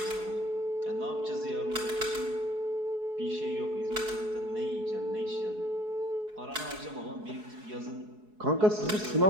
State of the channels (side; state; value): left; late; 4.7 ms